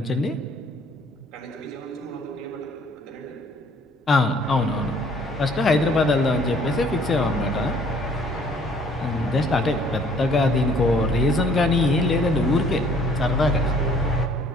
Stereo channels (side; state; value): both; normal; correlation 0.58